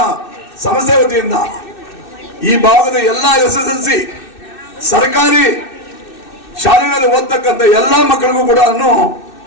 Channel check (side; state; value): right; late; 2.6 ms